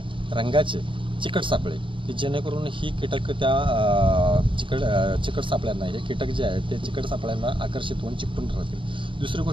रंगाचे चिकट सापळे की जेणेकरून ही कीटक त्या चिकट सापळ्यांना, हे कीटक जे आहेत ते चिकट सापळ्यांना आकर्षित होऊन चिकटून राहतील. दुसरी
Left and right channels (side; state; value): left; late; 0.25 ms